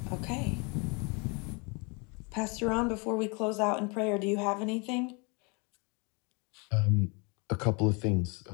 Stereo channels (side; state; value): right; quieter; 31.2 dB